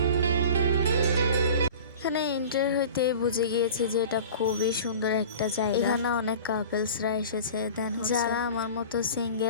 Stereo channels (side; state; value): both; inverted; correlation -0.39